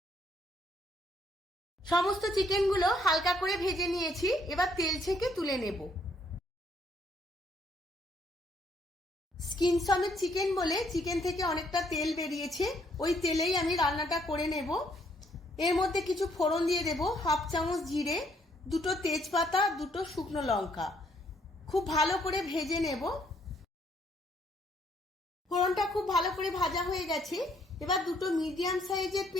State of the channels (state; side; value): normal; both; correlation 0.68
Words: সমস্ত চিকেনগুলো হালকা করে ভেজে নিয়েছি। এবার তেল ছেঁকে তুলে নেব। স্কিন সমেত চিকেন বলে চিকেন থেকে অনেকটা তেল বেরিয়েছে, ওই তেলেই আমি রান্নাটা করে নেব। এর মধ্যে কিছু ফোড়ন দিয়ে দেব। 1/2 চামচ জিরে, 2টো তেজপাতা, 2টো শুকনো লঙ্কা। খুব ভালো করে ভেজে নেব। ফোড়নটা খুব ভালো করে ভাজা হয়ে গেছে। এবার 2টো মিডিয়াম সাইজের